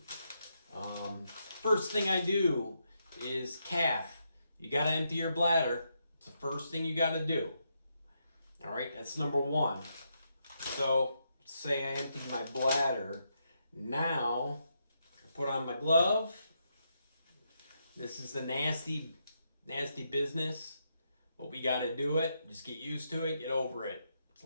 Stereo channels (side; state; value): both; inverted; correlation -0.81